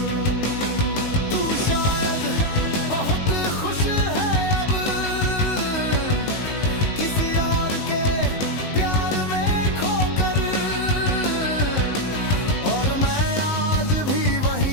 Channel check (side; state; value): right; late; 19 ms